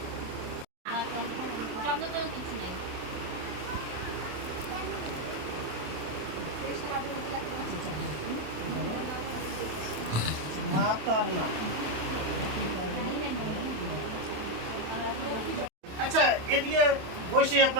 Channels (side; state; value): left; late; 27 ms